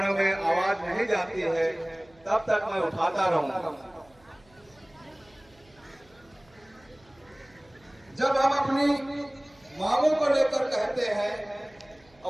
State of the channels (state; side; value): noise; right; hum, 29 dB below the sound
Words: में आवाज नहीं जाती है तब तक मैं उठाता रहूंगा। जब हम अपनी मांगों को लेकर कहते हैं